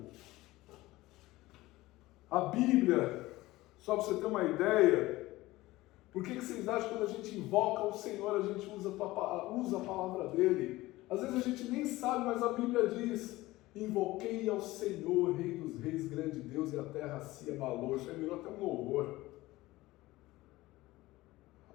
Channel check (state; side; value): quieter; right; 18.5 dB